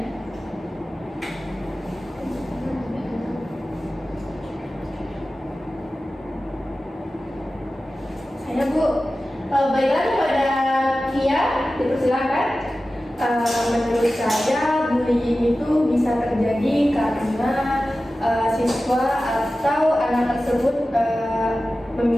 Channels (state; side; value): normal; both; correlation 0.95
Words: Saya, Bu. Baiklah, kepada Kia dipersilakan. Menurut saya bullying itu bisa terjadi karena siswa atau anak tersebut